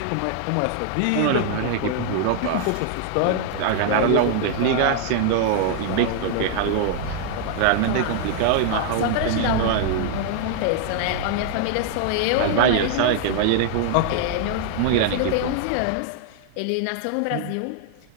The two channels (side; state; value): both; different; correlation 0.00